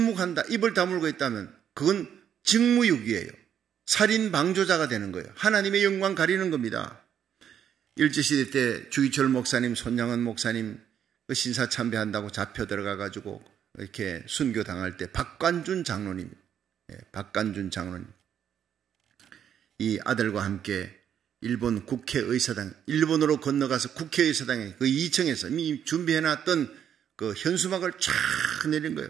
입을 다물고 있다면 그건 직무유기예요. 살인 방조자가 되는 거예요. 하나님의 영광 가리는 겁니다. 일제시대 때 주기철 목사님, 손양은 목사님 그 신사 참배한다고 잡혀 들어가가지고 이렇게 순교 당할 때 박관준 장로님, 박관준 장로님, 이 아들과 함께 일본 국회의사당, 일본으로 건너가서 국회의사당에 그 2층에서 이미 준비해놨던 그 현수막을 쫙 내린 거예요.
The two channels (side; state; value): left; quieter; 9.1 dB